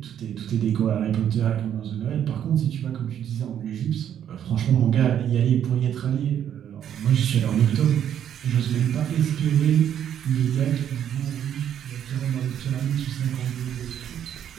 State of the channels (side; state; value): left; quieter; 9.7 dB